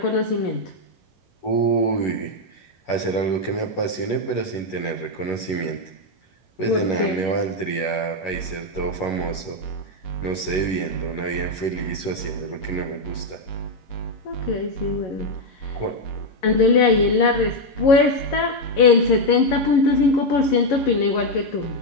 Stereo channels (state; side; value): late; right; 11 ms